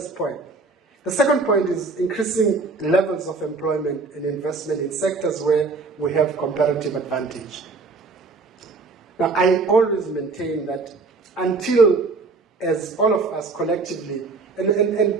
point. The second point is increasing levels of employment and investment in sectors where we have comparative advantage. Now, I always maintain that until, as all of us collectively, and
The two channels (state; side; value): quieter; left; 4.0 dB